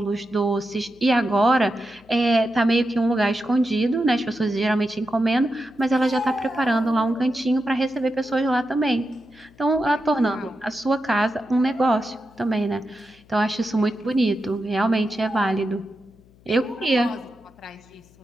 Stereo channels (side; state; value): left; noise; hum, 28 dB below the sound